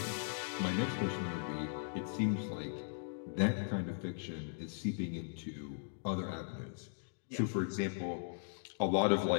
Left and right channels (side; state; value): right; silent; digital silence